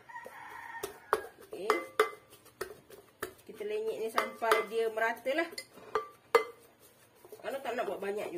Okey. Kita lenyek ni sampai dia merata lah. Kalau tak nak buat banyak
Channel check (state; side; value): identical; both; correlation 1.00